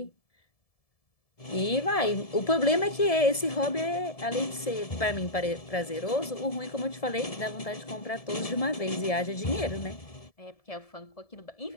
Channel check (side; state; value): right; late; 1.7 ms